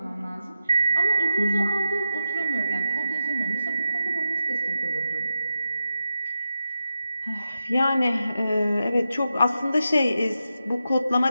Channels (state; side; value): inverted; both; correlation -0.88